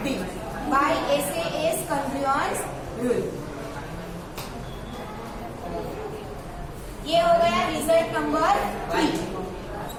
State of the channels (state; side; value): identical; both; correlation 1.00